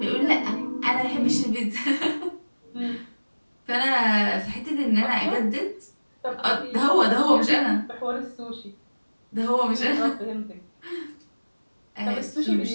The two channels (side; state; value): both; inverted; correlation -1.00